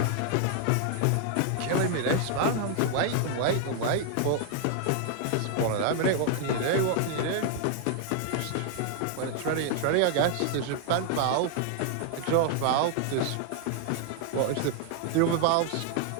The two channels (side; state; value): both; different; correlation 0.00